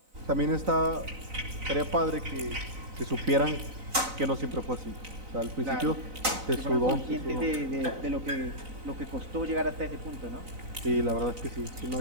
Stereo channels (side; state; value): left; late; 3.9 ms